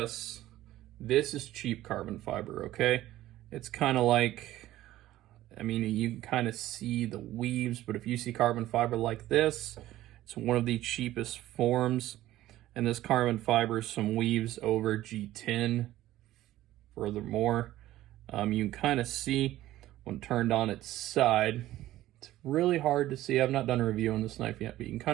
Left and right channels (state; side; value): quieter; left; 14.8 dB